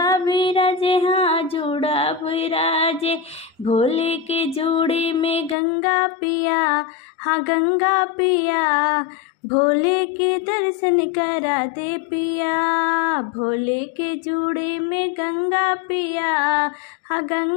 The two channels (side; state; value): right; drops out; at 5.6 s